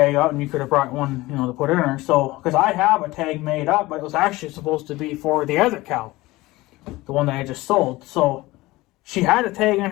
out, and you could have brought one, to put in her. So, because I have a tag made up, but it was actually supposed to be for the other cow, the one that I just sold. So she had a tag in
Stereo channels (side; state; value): right; quieter; 19.6 dB